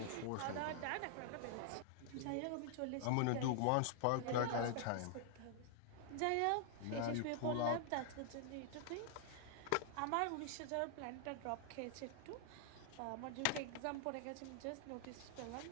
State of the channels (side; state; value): both; different; correlation -0.01